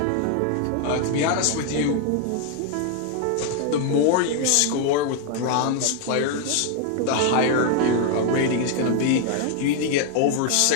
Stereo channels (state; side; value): different; both; correlation 0.00